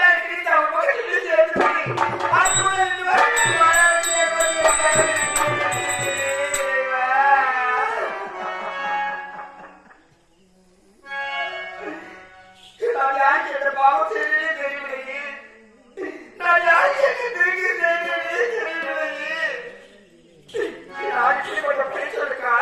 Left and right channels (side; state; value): both; identical; correlation 1.00